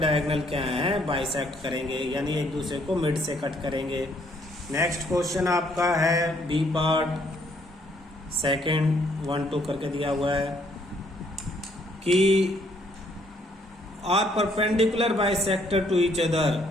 क्या हैं, बाइसेक्ट करेंगे, यानी एक दूसरे को मिड से कट करेंगे। नेक्स्ट क्वेश्चन आपका है बी पार्ट सेकंड 1 2 करके दिया हुआ है कि are perpendicular bisector to each other,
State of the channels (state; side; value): normal; both; correlation 0.67